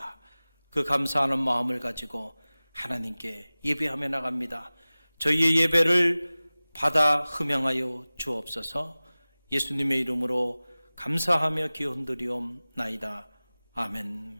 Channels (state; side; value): inverted; both; correlation -0.99